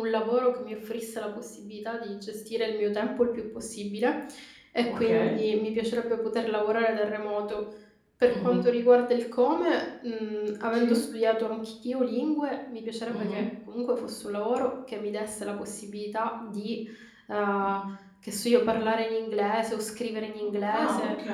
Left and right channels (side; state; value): both; identical; correlation 1.00